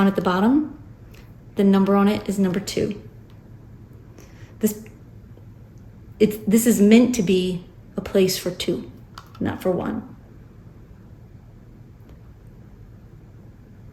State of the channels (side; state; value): both; identical; correlation 1.00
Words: at the bottom, the number on it is number 2. This is meant to be a place for 2, not for 1.